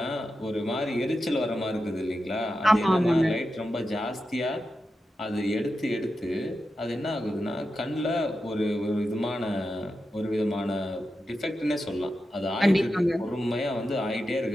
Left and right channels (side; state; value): both; normal; correlation 0.90